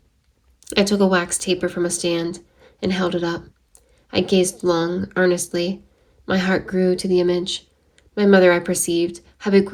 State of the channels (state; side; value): identical; both; correlation 1.00